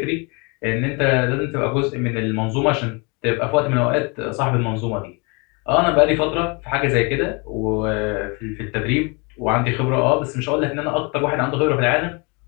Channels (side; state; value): right; quieter; 30.5 dB